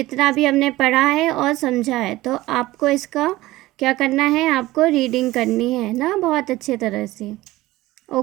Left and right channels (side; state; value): left; quieter; 17.9 dB